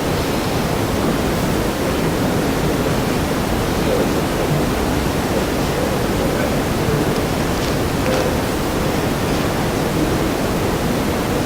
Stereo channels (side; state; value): both; identical; correlation 1.00